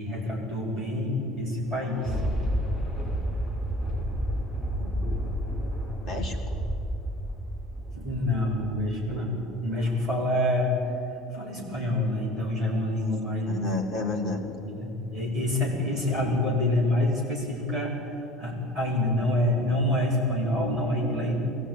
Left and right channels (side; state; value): both; normal; correlation 0.44